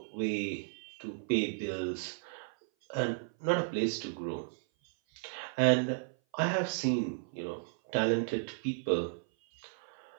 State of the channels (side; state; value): left; silent; 55 dB below the other